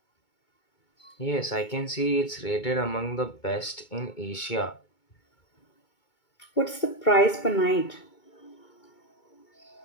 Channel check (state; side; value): late; right; 2.2 ms